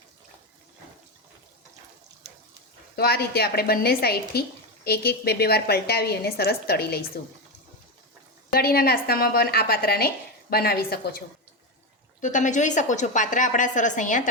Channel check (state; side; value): normal; both; correlation 0.13